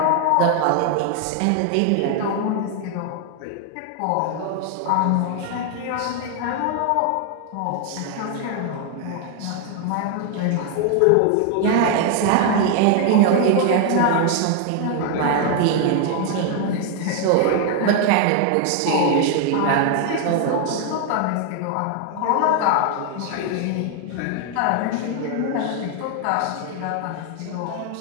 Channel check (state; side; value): different; both; correlation 0.00